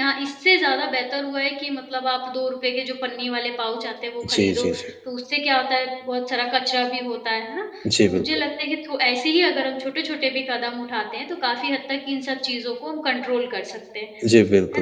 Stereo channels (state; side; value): identical; both; correlation 1.00